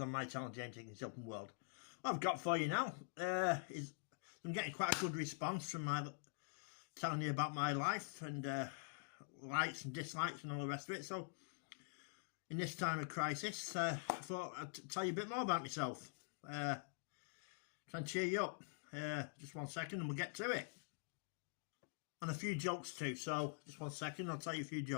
my channel James Higgins Open World. What I've got for you now is I'm getting quite a good response from my telling you about my life and likes and dislikes and all the rest of it. So in this time of crisis, I thought I'd tell you a bit more about myself. Try and cheer you up. Just 1 second and we'll get to it. And a few jokes too, so just 1 second, I'll tell you a few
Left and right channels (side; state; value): right; silent; digital silence